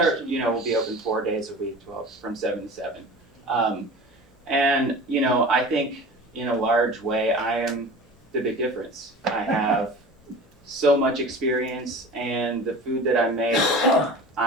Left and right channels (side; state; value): both; normal; correlation 0.37